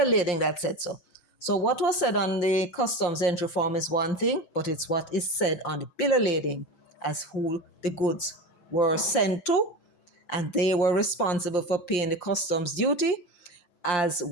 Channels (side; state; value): right; late; 5.7 ms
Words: lading that said so. So what was said on the customs entry form is one thing, but it's what is said on the bill of lading as who the goods were sent to, and they were responsible for paying the customs duty as